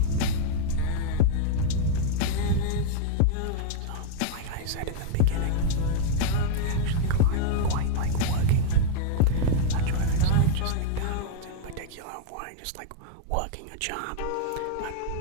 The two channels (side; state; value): both; different; correlation 0.00